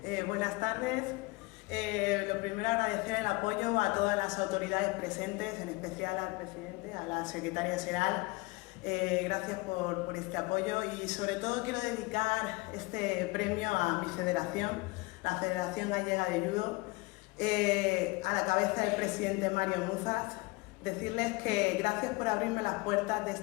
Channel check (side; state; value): right; quieter; 23.9 dB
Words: Buenas tardes. Lo primero, agradecer el apoyo a todas las autoridades presentes, en especial al presidente, a la secretaria general. Gracias por este apoyo y sobre todo quiero dedicar este premio a mi federación, la Federación Gallega de Judo, a la cabeza del presidente Mario Muzas. Decirles que gracias por abrirme las puertas de